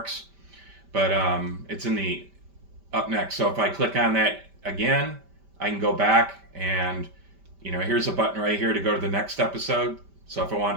But it's in the up next. So if I click on that again, I can go back and, here's a button right here to go to the next episode. So if I want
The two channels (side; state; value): left; late; 5.1 ms